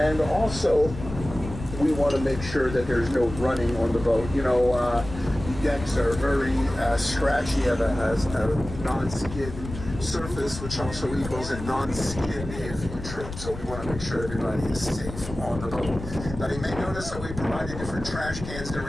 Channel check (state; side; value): noise; left; rumble, 10 dB below the sound